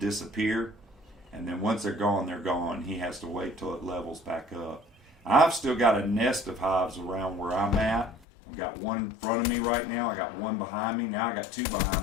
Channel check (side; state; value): right; drops out; at 8.2 s